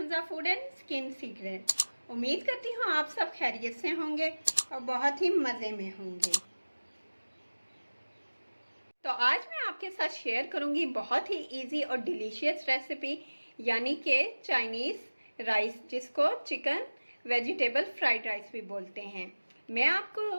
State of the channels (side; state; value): both; inverted; correlation -1.00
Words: food and skin secret. उम्मीद करती हूँ आप सब खैरियत से होंगे और बहुत ही मज़े में होंगे। तो आज मैं आपके साथ शेयर करूँगी बहुत ही इजी और डिलीशियस रेसिपी, यानी कि चाइनीज़ राइस, जिसको चिकन वेजिटेबल फ्राइड राइस भी बोलते हैं। मैं आपको